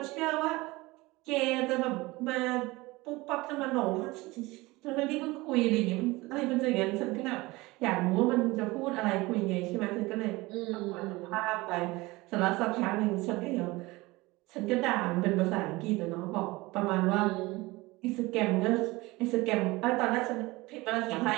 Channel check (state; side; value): quieter; left; 21.6 dB